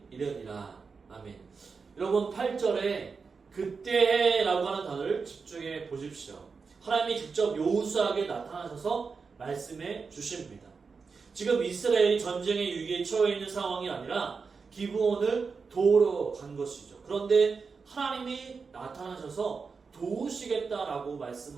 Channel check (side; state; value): left; quieter; 5.0 dB